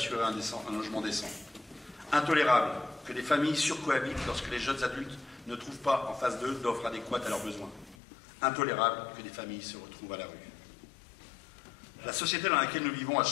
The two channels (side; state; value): right; drops out; at 8.0 s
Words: un logement décent. Intolérable que les familles surcohabitent lorsque les jeunes adultes ne trouvent pas en face d'eux d'offres adéquates à leurs besoins. Intolérable que des familles se retrouvent à la rue. La société dans laquelle nous vivons a